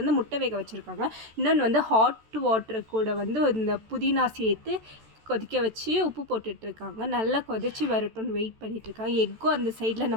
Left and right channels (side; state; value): left; late; 14 ms